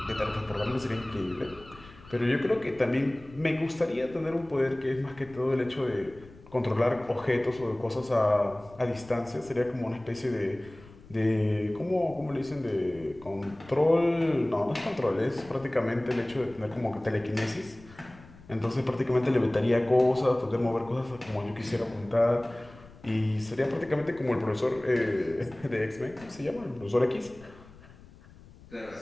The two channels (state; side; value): noise; left; rumble, 22 dB below the sound